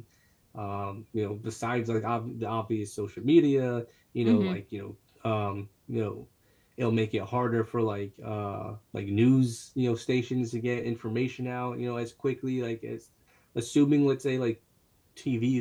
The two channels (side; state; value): both; identical; correlation 1.00